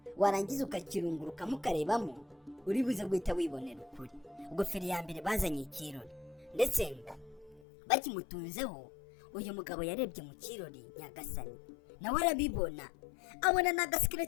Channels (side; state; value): right; drops out; at 7.7 s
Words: warangiza ukakirungurukamo ukarebamo, uri buze guhita wibonera ukuri. Ubwo feri ya mbere bazanye ikirori, ndetse bakimutunzeho uyu mugabo yarebye mu kirori nyagasani, nawe arabibona, abona na